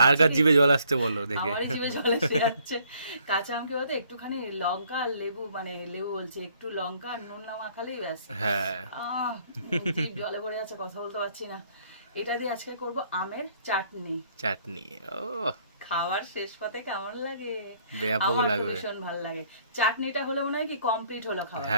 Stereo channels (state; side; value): inverted; both; correlation -0.63